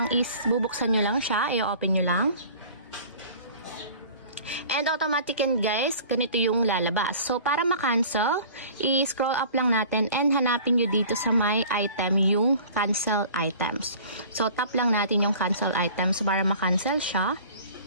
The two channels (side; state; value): both; inverted; correlation -0.45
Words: is, bubuksan nyo lang siya, i-open nyo lang. And automatic yan guys, ganito yung lalabas. So, para ma-cancel, i-scroll up lang natin and hanapin nyo dito sa my item yung cancel items. So, tap lang natin yung cancel items para ma-cancel siya.